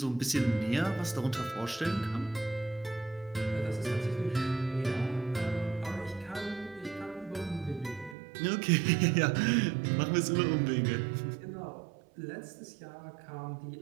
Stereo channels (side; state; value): left; drops out; at 8.2 s